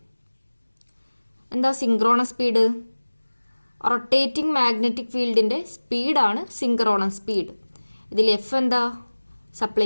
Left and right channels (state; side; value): inverted; both; correlation -1.00